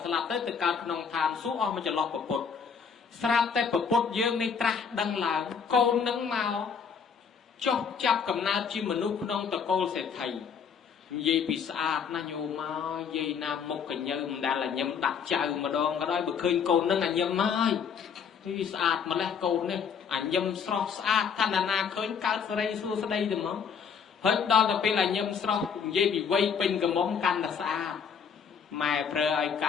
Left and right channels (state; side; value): quieter; right; 6.6 dB